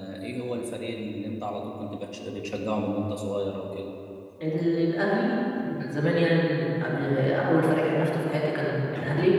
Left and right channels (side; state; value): both; identical; correlation 1.00